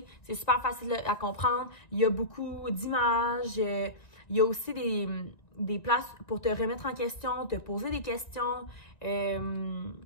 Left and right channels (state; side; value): late; right; 1.9 ms